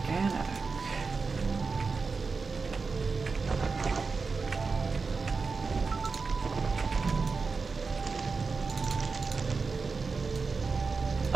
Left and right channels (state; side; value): quieter; left; 4.5 dB